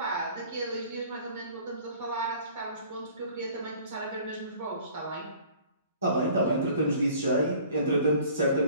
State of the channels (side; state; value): both; inverted; correlation -0.51